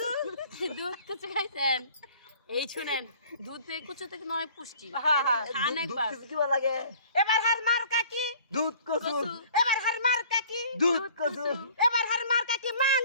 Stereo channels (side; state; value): both; inverted; correlation -0.51